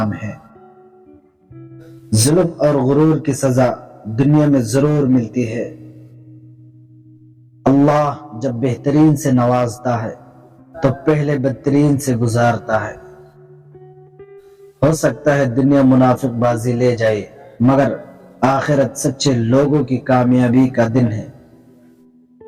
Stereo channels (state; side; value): identical; both; correlation 1.00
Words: ہے۔ ظلم اور غرور کی سزا دنیا میں ضرور ملتی ہے۔ اللہ جب بہترین سے نوازتا ہے تو پہلے بدترین سے گزارتا ہے۔ ہو سکتا ہے دنیا منافق بازی لے جائے، مگر آخرت سچے لوگوں کی کامیابی کا دن ہے۔